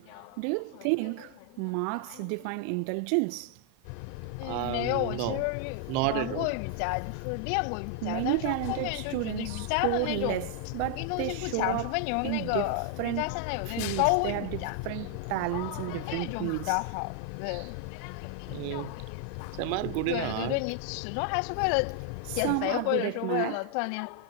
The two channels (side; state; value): both; different; correlation 0.00